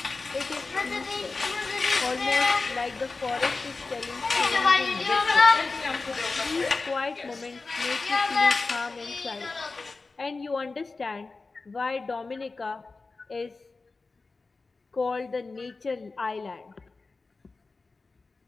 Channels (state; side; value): quieter; right; 3.8 dB